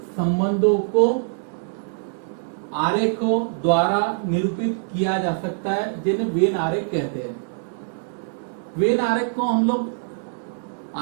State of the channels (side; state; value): left; silent; 63 dB below the other